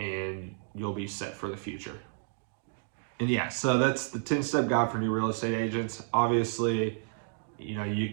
you'll be set for the future. And yeah, so that's the 10-step guide for new real estate agents. Obviously, you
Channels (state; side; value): silent; left; digital silence